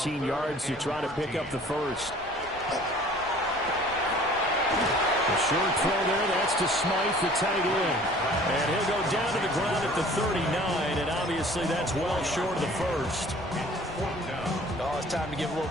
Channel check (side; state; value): left; noise; rumble, 21 dB below the sound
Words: yards to try to pick up the first. The short throw there, that's to Smythe, the tight end. And he'll go down to the ground at the 39, and obviously that's well short of the first. Oh, it's time to give a little